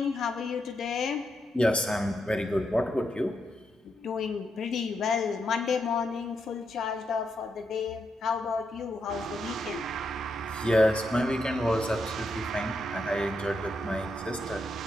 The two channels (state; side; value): normal; both; correlation 0.82